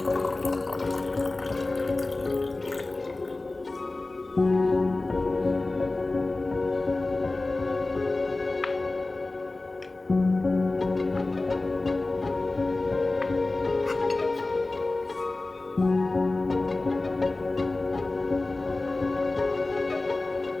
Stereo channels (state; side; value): quieter; right; 3.1 dB